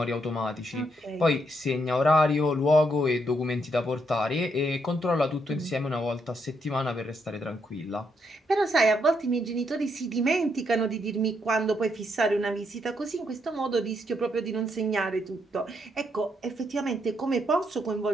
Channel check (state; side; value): normal; both; correlation 0.77